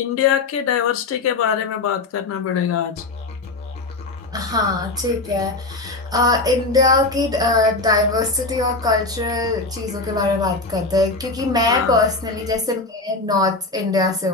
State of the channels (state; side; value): quieter; right; 3.4 dB